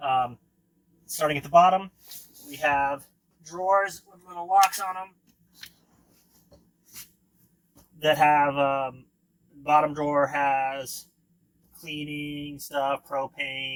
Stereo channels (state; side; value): identical; both; correlation 1.00